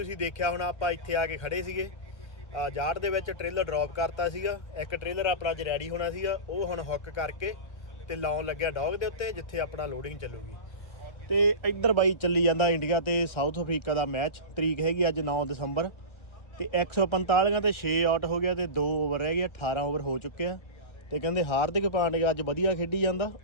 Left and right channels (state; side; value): late; right; 1.3 ms